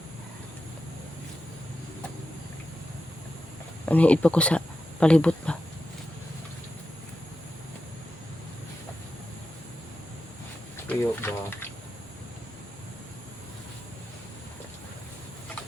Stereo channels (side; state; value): both; normal; correlation 0.90